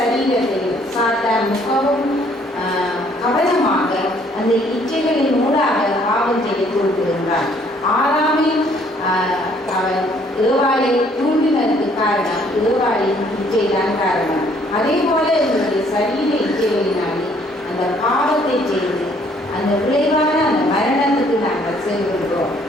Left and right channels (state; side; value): normal; both; correlation 0.63